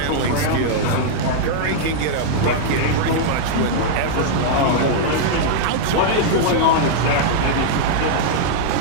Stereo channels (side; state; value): both; different; correlation -0.02